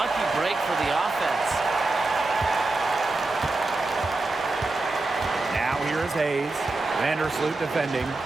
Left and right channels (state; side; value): quieter; left; 3.2 dB